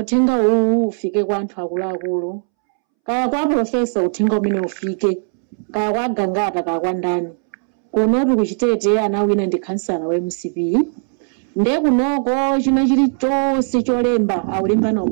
uwu ufike kwa anthu akuluakulu kaya kwa profesa uthenga umene ufike kaya kwa gangata kaya kwa ndani kuno tuli kuchitete anawina ndi kansala wa MCP nde kunoko china chilichonse cholemba aulemba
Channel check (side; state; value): left; silent; 67 dB below the other